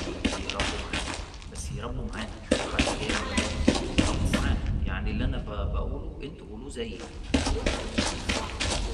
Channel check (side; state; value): both; identical; correlation 1.00